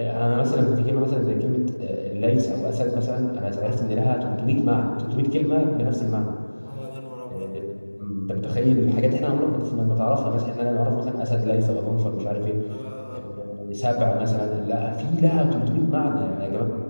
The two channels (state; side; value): inverted; both; correlation -1.00